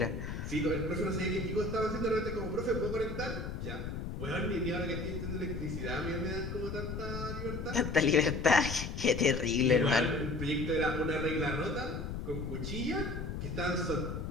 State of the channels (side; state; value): left; noise; rumble, 5 dB below the sound